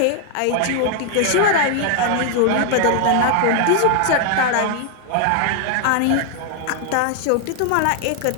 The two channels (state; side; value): different; both; correlation 0.00